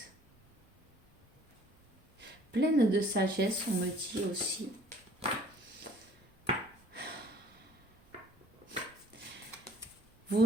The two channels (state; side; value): normal; both; correlation 0.56